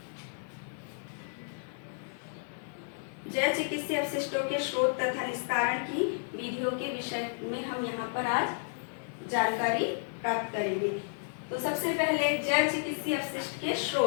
जल चिकित्सीय अपशिष्टों के स्रोत तथा निस्तारण की विधियों के विषय में हम यहाँ पर आज जानकारी प्राप्त करेंगे। तो सबसे पहले जल चिकित्सीय अपशिष्ट के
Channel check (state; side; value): silent; right; 56 dB below the other